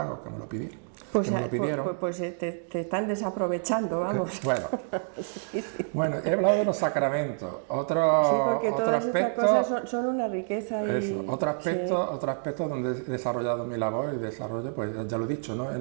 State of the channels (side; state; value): left; silent; digital silence